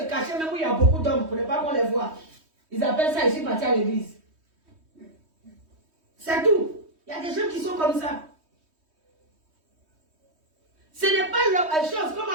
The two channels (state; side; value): late; left; 3.2 ms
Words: cacher, même où il y a beaucoup d'hommes, pour ne pas qu'on les voit. Ils appellent ça, je suis parti à l'église. C'est tout. Il y a des gens qui sont comme ça. Ce n'est pas la chose, comme on